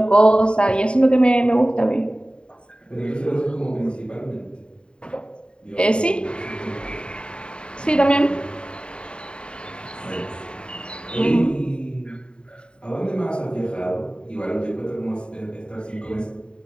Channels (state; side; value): late; right; 0.052 ms